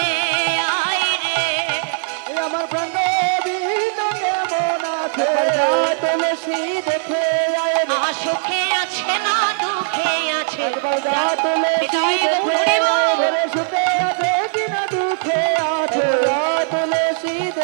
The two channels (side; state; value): left; silent; digital silence